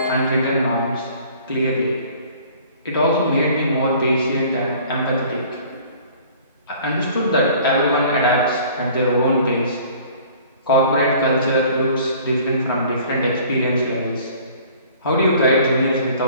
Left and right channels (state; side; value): inverted; both; correlation -0.51